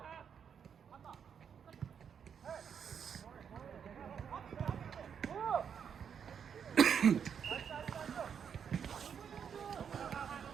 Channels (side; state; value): left; quieter; 7.5 dB